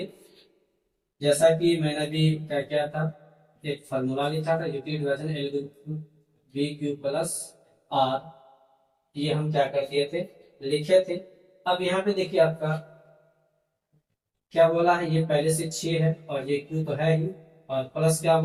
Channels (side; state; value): both; identical; correlation 1.00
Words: जैसा कि मैंने भी क्या किया था एक फॉर्मूला लिखा था Euclid division L B Q plus R, ये हम क्या कर दिए थे लिखे थे। अब यहाँ पे देखिए आपका क्या बोला है ये पहले से 6 है और ये क्यू तो है ही, और प्लस क्या